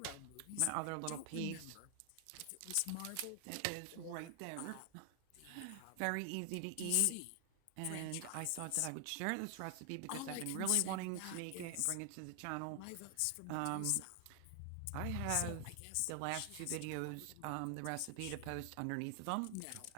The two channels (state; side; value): different; both; correlation 0.00